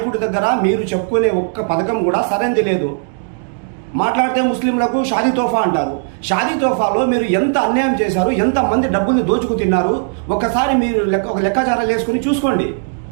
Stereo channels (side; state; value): left; silent; digital silence